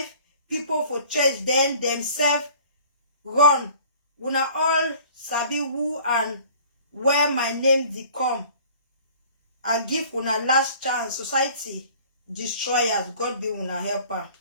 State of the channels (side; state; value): both; inverted; correlation -0.50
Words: people for church, then themselves run. Una all sabi who and where my name dey come. I give una last chance. Society destroyers. God be una helper.